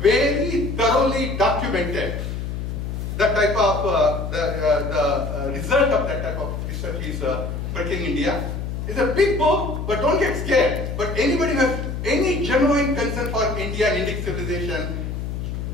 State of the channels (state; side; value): noise; left; hum, 4 dB below the sound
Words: thoroughly documented. That type of, the result of that type of research is Breaking India. It's a big book, but don't get scared. But anybody who has any genuine concern for India and Indic civilization,